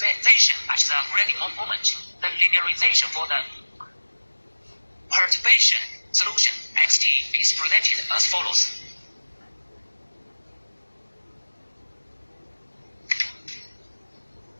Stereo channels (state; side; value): inverted; both; correlation -1.00